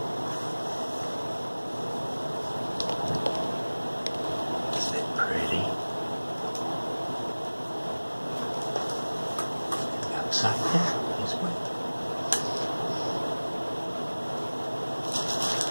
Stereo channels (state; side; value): inverted; both; correlation -1.00